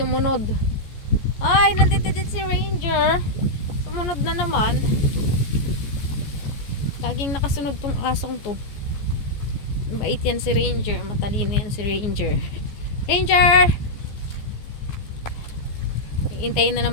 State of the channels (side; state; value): right; late; 14 ms